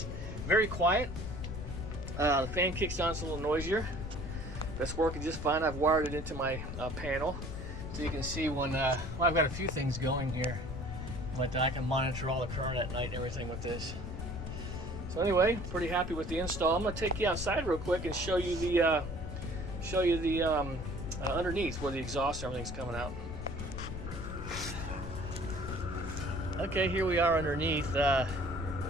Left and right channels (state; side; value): noise; left; rumble, 7 dB below the sound